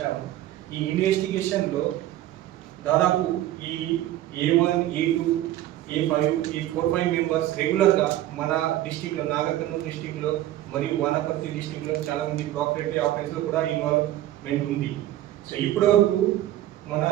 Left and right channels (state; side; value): quieter; left; 13.9 dB